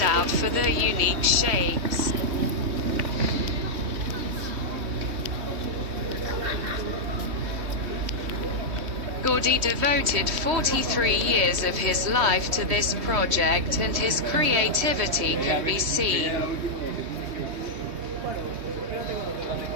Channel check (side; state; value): left; late; 3.2 ms